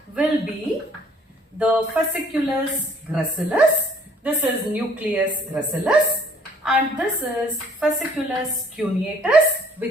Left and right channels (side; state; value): both; normal; correlation 0.59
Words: will be the fasciculus gracilis. This is nucleus gracilis. And this is fasciculus cuneatus